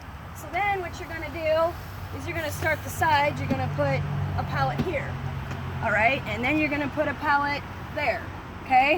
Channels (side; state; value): both; identical; correlation 1.00